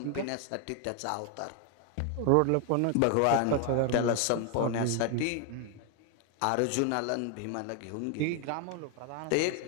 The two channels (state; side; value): different; both; correlation 0.01